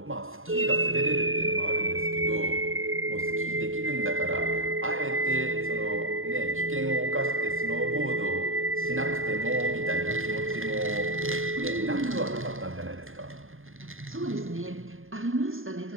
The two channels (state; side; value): late; left; 0.59 ms